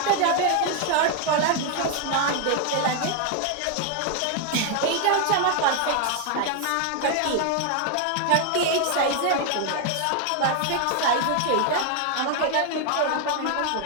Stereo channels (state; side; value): different; both; correlation 0.01